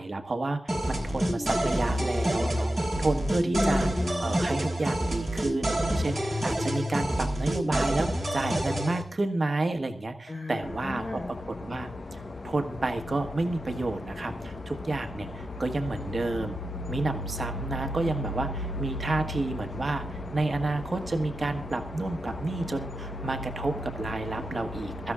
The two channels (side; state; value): both; normal; correlation 0.91